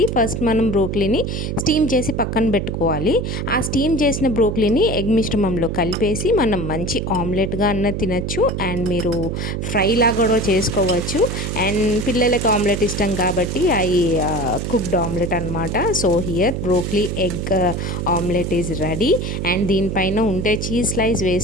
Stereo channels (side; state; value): right; noise; hum, 3 dB below the sound